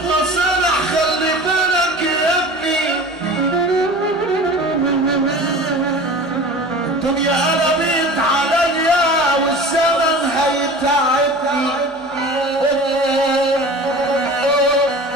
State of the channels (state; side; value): normal; both; correlation 0.38